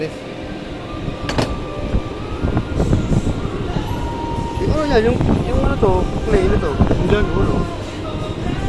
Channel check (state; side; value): identical; both; correlation 1.00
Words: Yung ano yan? Yung ano to? Clay na to? Yung dyan? Ulo.